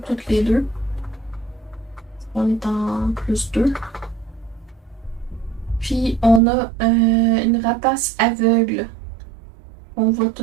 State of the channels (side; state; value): left; drops out; at 6.4 s